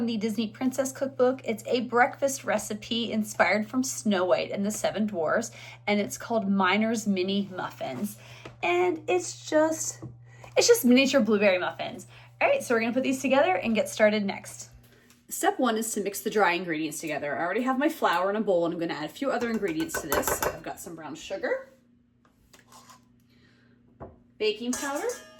the Disney Princess Cookbook. It's a breakfast recipe inspired from Snow White and the Seven Dwarfs, and it's called Miner's Mini Muffins. And it's just miniature blueberry muffins. All right, so we're gonna put these together and get started next. Step one is to mix the dry ingredients together. I already have my flour in a bowl, and I'm gonna add a few other ingredients to this. So I've got some brown sugar, baking powder,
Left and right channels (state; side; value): identical; both; correlation 1.00